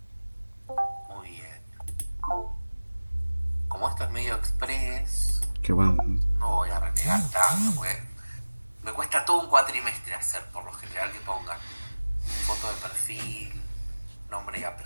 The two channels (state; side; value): inverted; both; correlation -1.00